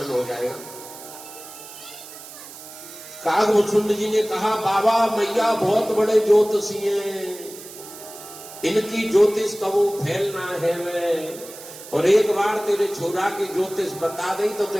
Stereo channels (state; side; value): noise; right; hiss, 15 dB below the sound